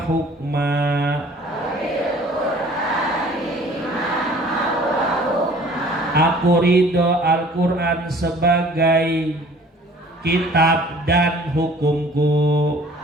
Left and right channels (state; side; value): normal; both; correlation 0.51